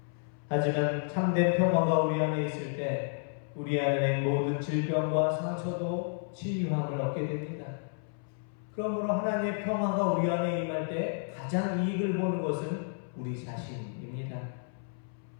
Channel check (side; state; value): right; silent; 57 dB below the other